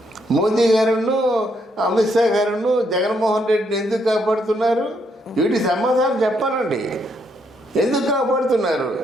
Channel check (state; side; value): normal; both; correlation 0.74